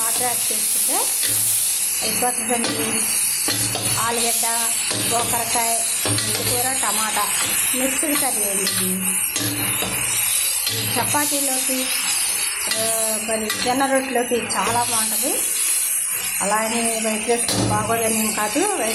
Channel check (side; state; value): both; identical; correlation 1.00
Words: యాడ్ చేసుకుంటే అయిపోతుందండి. ఆలుగడ్డ, గోకరకాయ, మెంతికూర, టమాటా మిక్స్డ్ కర్రీ అండి. చపాతీలోకి మరి జొన్న రొట్టెలోకి చాలా బాగుంటుంది. అలాగే వైట్ రైస్ బాగోదని కాదు,